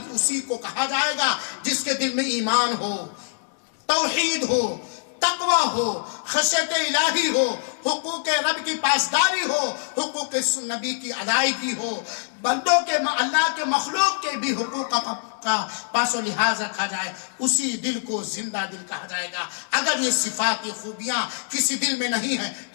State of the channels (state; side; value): silent; right; 62 dB below the other